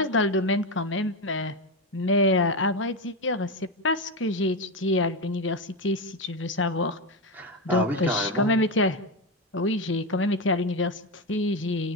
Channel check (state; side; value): normal; both; correlation 0.13